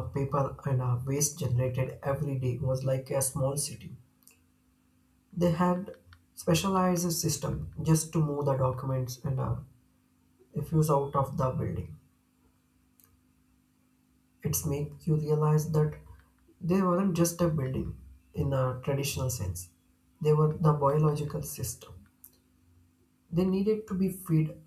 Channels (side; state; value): both; identical; correlation 1.00